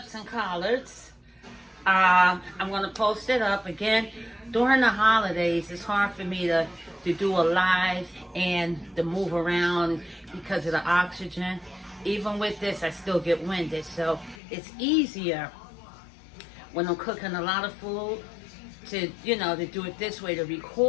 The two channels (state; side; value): drops out; right; at 14.4 s